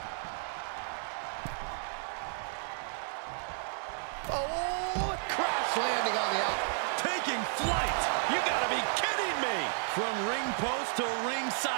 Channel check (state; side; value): silent; left; digital silence